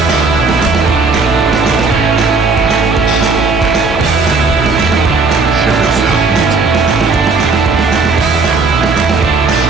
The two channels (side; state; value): left; quieter; 4.1 dB